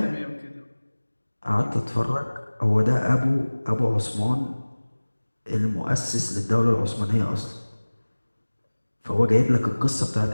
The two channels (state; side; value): inverted; both; correlation -1.00